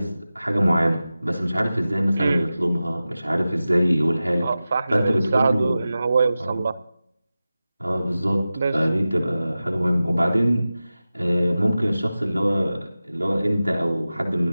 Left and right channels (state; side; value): inverted; both; correlation -0.95